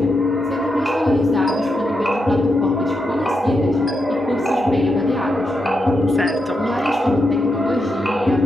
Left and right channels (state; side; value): normal; both; correlation 0.85